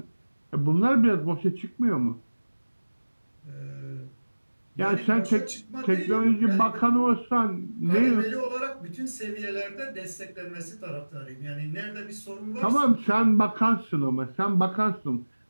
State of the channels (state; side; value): inverted; both; correlation -1.00